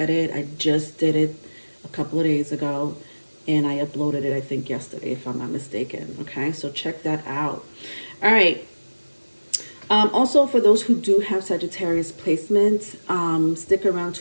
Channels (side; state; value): both; inverted; correlation -1.00